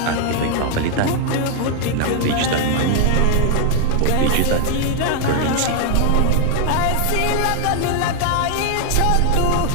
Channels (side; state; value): both; different; correlation 0.00